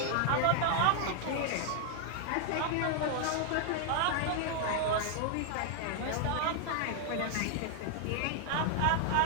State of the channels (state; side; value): different; both; correlation 0.00